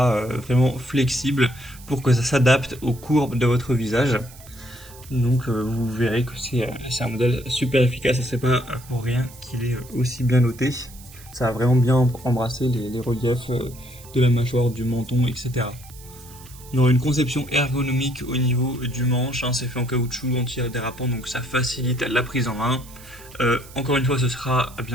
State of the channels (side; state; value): right; noise; hiss, 20 dB below the sound